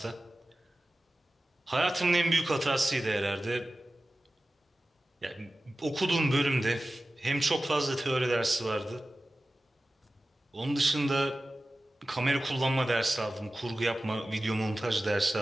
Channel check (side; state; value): both; normal; correlation 0.95